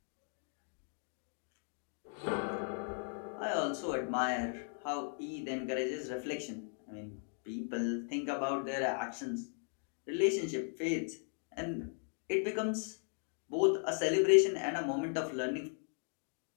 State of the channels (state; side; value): silent; right; 53 dB below the other